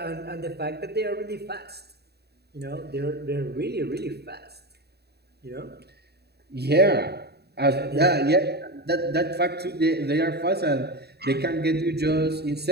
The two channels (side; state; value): left; late; 0.48 ms